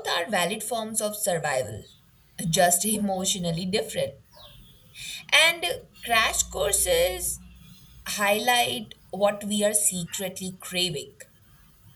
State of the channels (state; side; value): identical; both; correlation 1.00